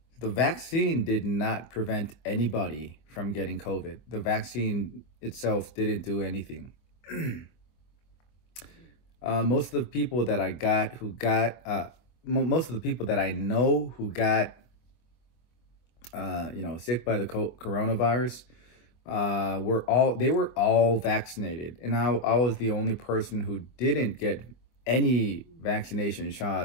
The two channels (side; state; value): right; late; 24 ms